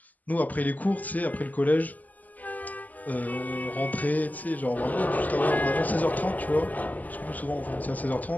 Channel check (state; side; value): late; right; 0.080 ms